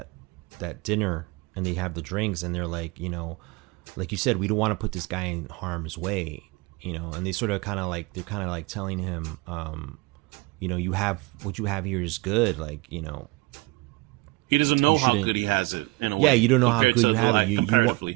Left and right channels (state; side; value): quieter; left; 24.1 dB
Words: dinner and they have the drinks and they're like, like you said, we don't want to put this guy in harm's way, and they sort of kind of like, they're kind of like telling him, you have, what you have here is good. Like, he doesn't know how good he has it in a way. Yeah. You don't know how good you have it.